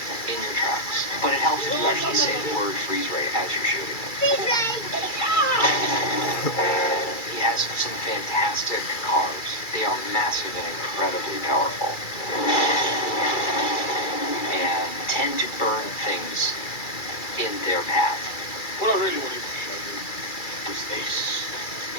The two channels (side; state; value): right; late; 2.3 ms